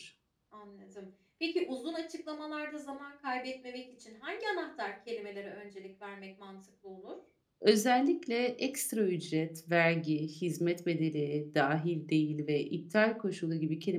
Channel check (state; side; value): identical; both; correlation 1.00